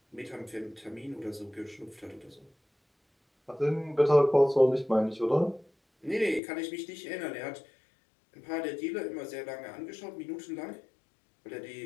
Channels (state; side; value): drops out; right; at 6.4 s